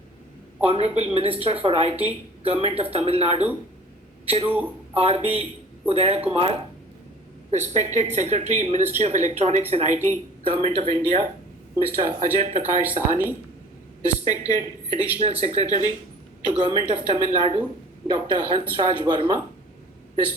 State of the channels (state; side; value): normal; both; correlation 0.47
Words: Honorable Minister for IT, Government of Tamil Nadu, Thiru RB Udayakumar, respected Secretary, Ministry of Electronics and IT, Government of India, Mr. Ajay Prakash Sahani, respected Additional Secretary to Government of Tamil Nadu, Dr. Hansraj Verma,